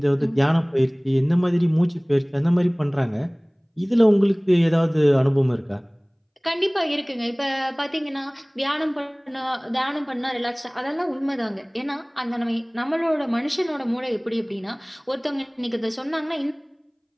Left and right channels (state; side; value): identical; both; correlation 1.00